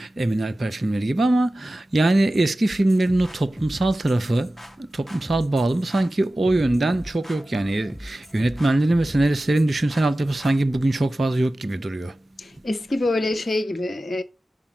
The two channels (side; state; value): both; normal; correlation 0.95